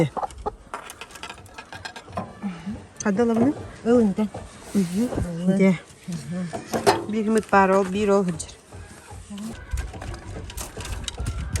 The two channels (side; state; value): both; identical; correlation 1.00